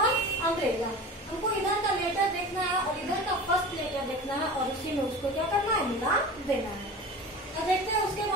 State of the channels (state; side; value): normal; both; correlation 0.34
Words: अम्ब्रेला। हमको इधर का लेटर देखना है और इधर का फर्स्ट लेटर देखना है और उसी में उसको क्या करना है मिला देना है। अब देखते हैं उसके